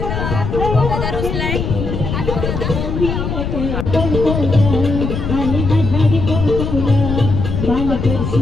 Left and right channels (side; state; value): left; noise; rumble, 3 dB below the sound